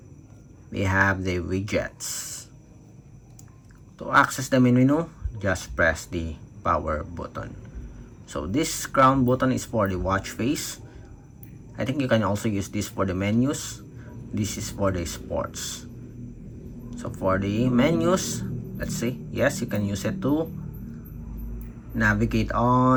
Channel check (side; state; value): both; identical; correlation 1.00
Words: we have the widgets. To access the main menu, just press the power button. So this crown button is for the watch face. I think you can also use this for the menus. This is for the sports. So for the menus, let's see. Yes, you can use it to navigate